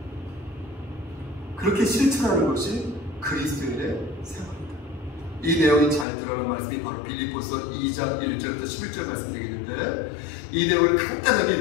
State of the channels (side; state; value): right; drops out; at 6.1 s